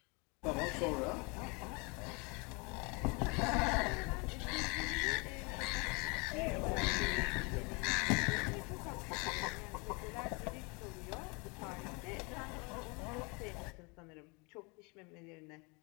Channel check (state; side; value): quieter; right; 30.1 dB